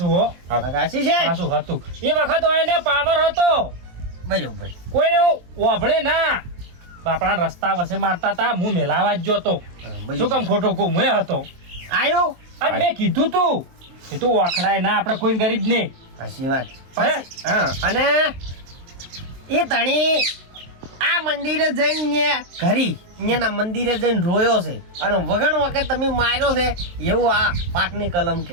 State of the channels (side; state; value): left; late; 23 ms